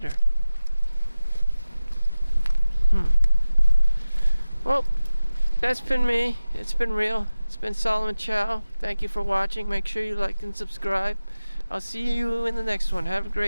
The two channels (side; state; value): both; inverted; correlation -0.95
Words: Well, that's been me. It's been real. It's been Solomon Chau. Thank you for watching. Make sure you like and subscribe. I'll see you in the next one. Have a